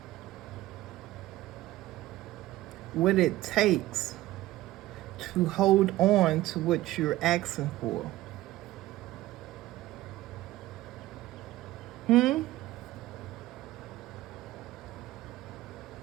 what it takes to hold on to what you're asking for?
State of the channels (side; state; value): left; quieter; 16.5 dB